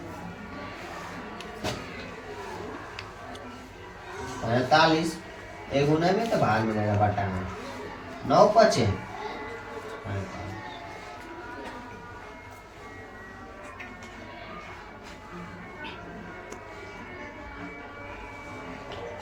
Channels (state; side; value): identical; both; correlation 1.00